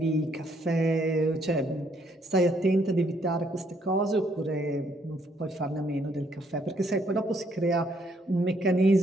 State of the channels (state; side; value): normal; both; correlation 0.70